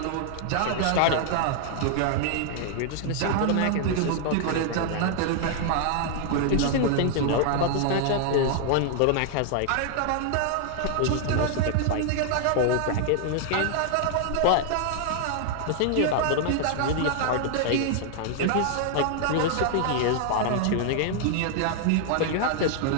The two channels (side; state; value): both; different; correlation 0.00